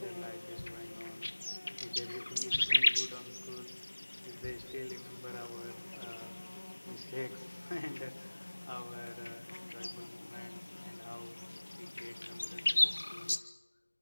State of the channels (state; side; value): inverted; both; correlation -1.00